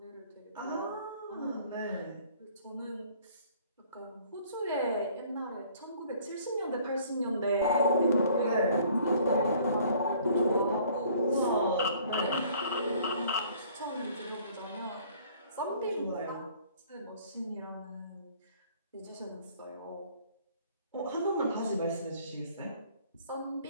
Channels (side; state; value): both; inverted; correlation -0.56